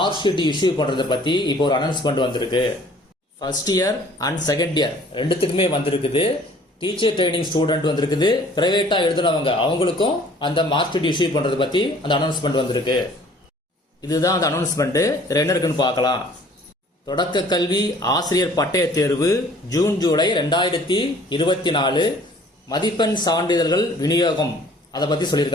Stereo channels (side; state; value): both; normal; correlation 0.54